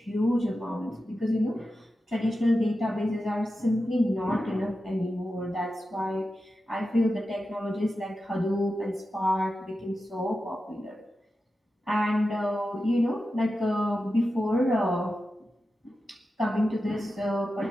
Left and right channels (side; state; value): both; normal; correlation 0.91